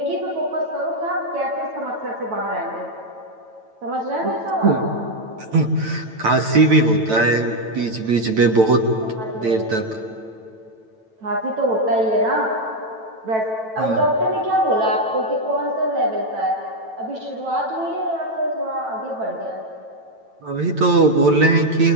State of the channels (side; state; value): left; late; 9.1 ms